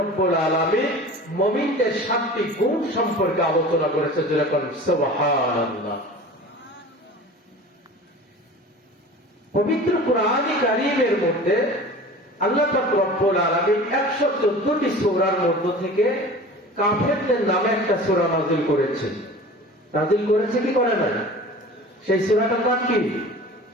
আলামিন মুমিনদের 7টি গুণ সম্পর্কে আলোচনা করেছে। যেরকম সুবহানাল্লাহ। পবিত্র কোরআনে কারীমের মধ্যে আল্লাহ পাক রব্বুল আলামিন 114টি সূরার মধ্য থেকে কাফেরদের নামে একটা সূরা নাযিল করেছে। নাযিল করেছে কি করে না? সেই সূরাটার নাম কি?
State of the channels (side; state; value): both; normal; correlation 0.39